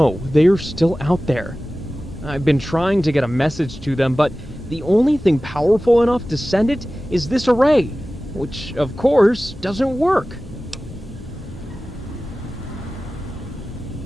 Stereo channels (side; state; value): both; normal; correlation 0.96